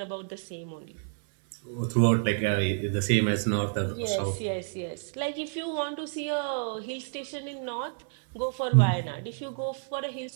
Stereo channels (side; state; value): left; silent; 58 dB below the other